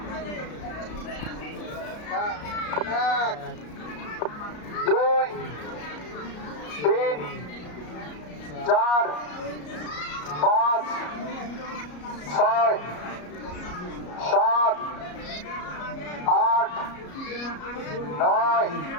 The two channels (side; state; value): right; late; 33 ms